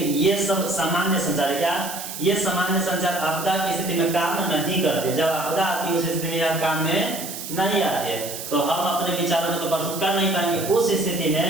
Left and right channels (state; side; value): noise; right; hiss, 9 dB below the sound